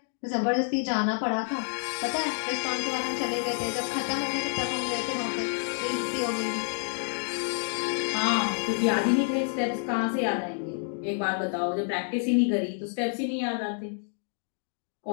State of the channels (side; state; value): right; silent; 59 dB below the other